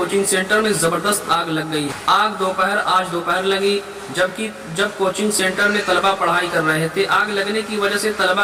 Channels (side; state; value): both; identical; correlation 1.00